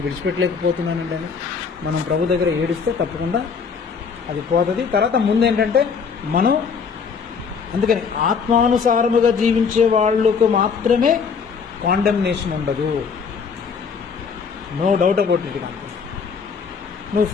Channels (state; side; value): quieter; right; 5.8 dB